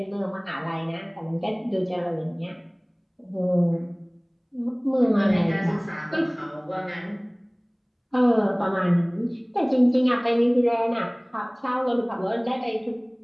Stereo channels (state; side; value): identical; both; correlation 1.00